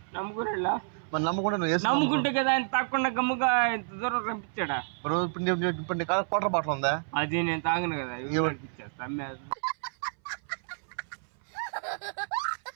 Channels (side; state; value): left; silent; 58 dB below the other